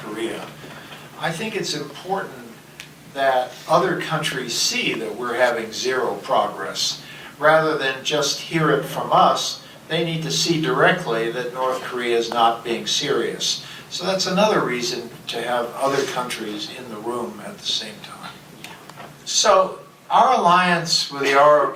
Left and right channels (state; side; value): identical; both; correlation 1.00